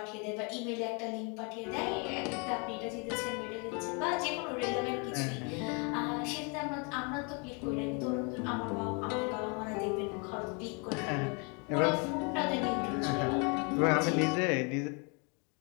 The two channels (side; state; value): right; quieter; 34.1 dB